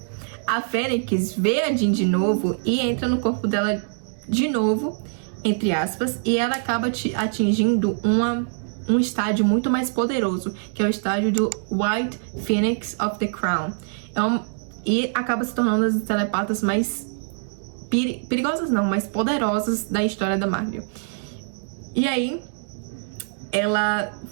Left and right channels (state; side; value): silent; left; digital silence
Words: A Fênix vê a Jean de novo e entra no corpo dela de novo, entre aspas, e ela acaba atingindo um estágio muito mais poderoso, que é o estágio do White Phoenix of the Crown. E acaba se tornando as telepatas mais perigosas não, mais poderosas da história da Marvel. E aí, ela